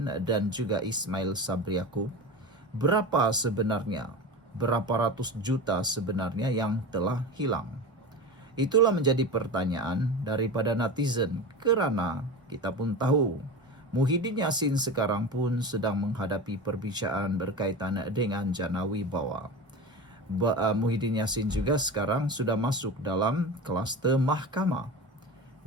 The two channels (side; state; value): both; normal; correlation 0.27